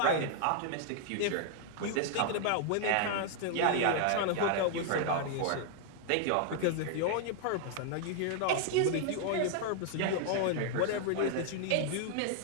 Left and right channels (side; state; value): both; different; correlation 0.00